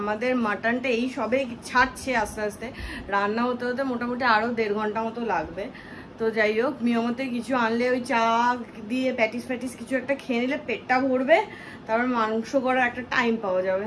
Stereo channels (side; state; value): both; identical; correlation 1.00